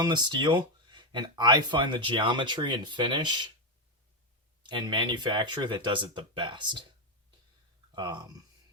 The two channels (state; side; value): normal; both; correlation 0.05